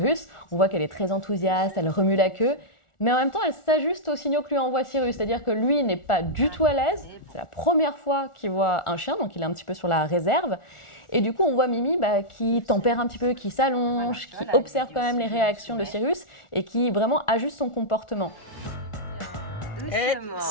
On voit qu'elle est très enthousiaste, elle remue la queue, mais en même temps elle s'ajuste aux signaux que lui envoie Sirius, c'est-à-dire que lui n'est pas du tout à l'aise. C'est la première fois qu'il voit un chien, donc il est un petit peu sur la réserve. Et du coup, on voit Mimi qui tempère un petit peu, qui s'allonge, qui observe quand même les réactions de Sirius et qui vraiment ajuste son comportement.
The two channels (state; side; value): late; right; 1.4 ms